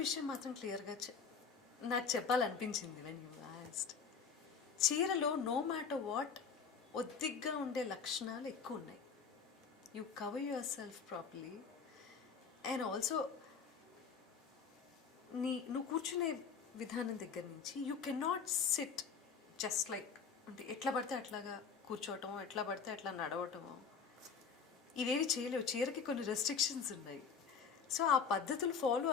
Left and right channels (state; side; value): quieter; right; 6.0 dB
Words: విషయం మాత్రం క్లియర్గా నాకు చెప్పాలనిపించింది వెన్ యూ ఆస్క్డ్. చీరలో నో మ్యాటర్ వాట్ ఒద్దిగ్గా ఉండే లక్షణాలు ఎక్కువ ఉన్నాయి. You cover yourself properly and also నువ్వు కూర్చునే విధానం దగ్గర నుంచి you can not sit just like అంటే ఎట్లా పడితే అట్లాగా కూర్చోవటమో ఎట్లా పడితే అట్లా నడవటమో ఇవేవి చేయలేవు. చీరకి కొన్ని రెస్ట్రిక్షన్స్ ఉన్నాయి. సో ఆ పద్ధతులు ఫాలో